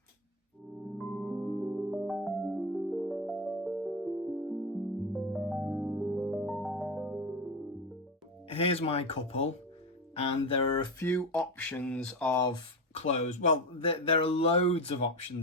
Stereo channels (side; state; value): both; normal; correlation 0.19